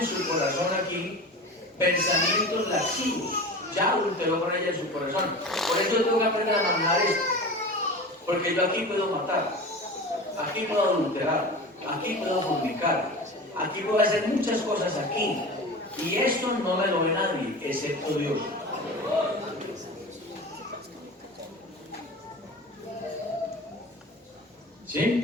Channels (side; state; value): both; normal; correlation 0.33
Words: su corazón aquí pensamientos lascivos, ya adulteró con ella en su corazón. Por eso tengo que aprender a manejar esto. Porque yo aquí puedo matar, aquí puedo adulterar, aquí puedo fornicar, aquí puedo hacer muchas cosas aquí. Y esto no me lo ve nadie, excepto Dios.